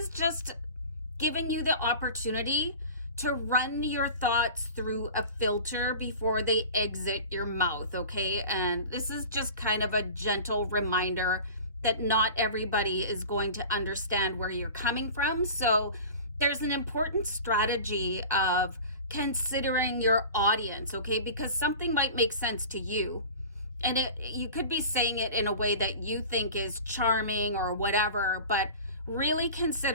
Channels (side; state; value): both; inverted; correlation -0.37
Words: just giving you the opportunity to run your thoughts through a filter before they exit your mouth, okay? And this is just kind of a gentle reminder that not everybody is going to understand where you're coming from. So there's an important strategy of considering your audience, okay? Because something might make sense to you, and you could be saying it in a way that you think is charming or whatever, but really